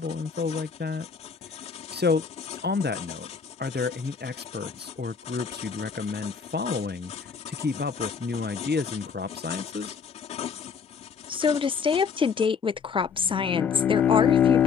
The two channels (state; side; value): quieter; right; 6.1 dB